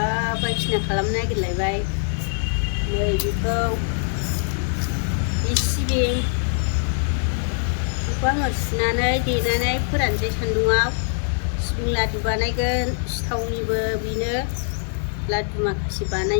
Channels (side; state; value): right; silent; digital silence